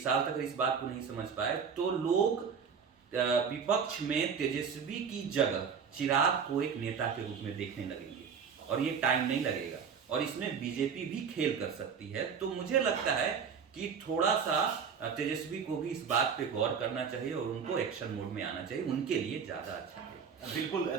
तक इस बात को नहीं समझ पाए, तो लोग विपक्ष में तेजस्वी की जगह चिराग को एक नेता के रूप में देखने लगेंगे और ये टाइम नहीं लगेगा और इसमें बीजेपी भी खेल कर सकती है। तो मुझे लगता है कि थोड़ा सा तेजस्वी को भी इस बात पे गौर करना चाहिए और उनको एक्शन मोड में आना चाहिए, उनके लिए ज्यादा अच्छा है। बिल्कुल,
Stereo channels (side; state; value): left; quieter; 6.5 dB